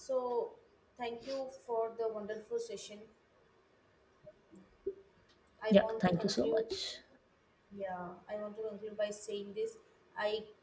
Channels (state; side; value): identical; both; correlation 1.00